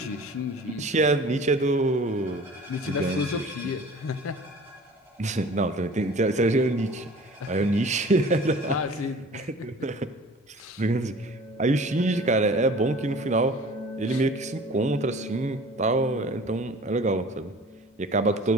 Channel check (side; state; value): both; normal; correlation 0.45